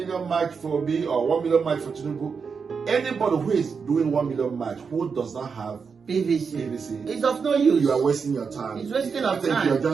march for me or 1 million march for Tinubu. Anybody who is doing 1 million march who does not have PVC, it's of no use. you are wasting your time. It's wasting I of think time. you're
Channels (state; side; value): quieter; left; 5.7 dB